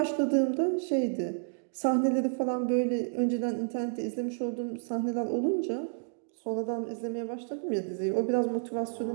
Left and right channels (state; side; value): silent; left; digital silence